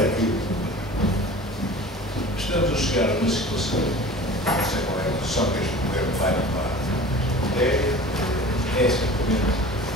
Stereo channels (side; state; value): both; normal; correlation 0.40